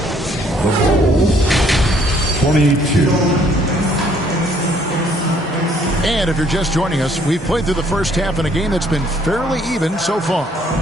22. And if you're just joining us, we've played through the first half in a game that's been fairly even so far.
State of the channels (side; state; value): both; normal; correlation 0.64